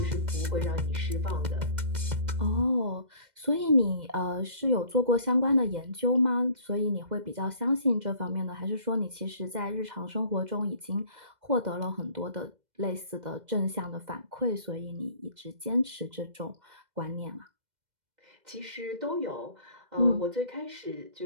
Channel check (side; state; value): left; late; 2.0 ms